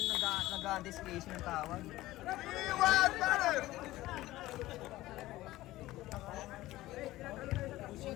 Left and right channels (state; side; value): quieter; right; 16.9 dB